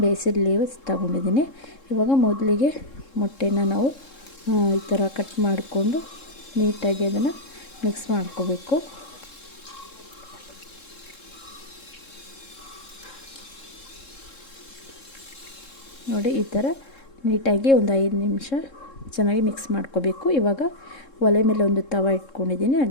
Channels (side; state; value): right; late; 3.7 ms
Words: ಬೇಸಿಲ್ ಲೀವ್ಸ್ ತೊಗೊಂಡಿದ್ದೀನಿ. ಇವಾಗ ಮೊದಲಿಗೆ ಮೊಟ್ಟೆನ ನಾವು ಈ ಥರ ಕಟ್ ಮಾಡಿಕೊಂಡು ನೀಟಾಗಿ ಅದನ್ನು ಮಿಕ್ಸ್ ಮಾಡ್ಕೋಬೇಕು. ನೋಡಿ, ಈ ಥರ ನೀಟಾಗಿ ಒಂದು 5 ನಿಮಿಷ ಚೆನ್ನಾಗಿ ಮಿಕ್ಸ್ ಮಾಡ್ಕೋಬೇಕು. ಇವಾಗ ಒಲೆ ಮೇಲೆ ಒಂದು ತವ ಇಟ್ಕೊಂಡಿದ್ದೀನಿ,